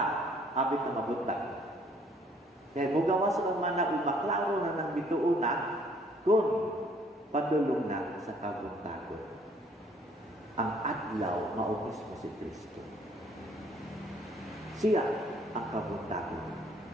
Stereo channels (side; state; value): both; normal; correlation 0.61